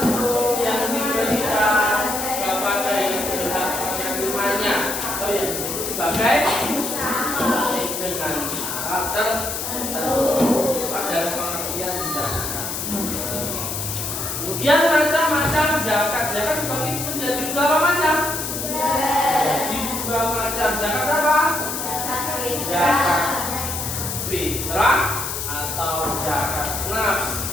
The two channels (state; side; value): noise; left; hiss, 4 dB below the sound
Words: yang diberikan kepada yang berhak menerimanya atau yang disebut sebagai dengan syarat tertentu. Ada pengertian zakat. Kemudian macam-macam zakat. Zakat dibagi menjadi berapa macam? Jadi dua macam. Zakat apa? Zakat fitrah atau zakat nafs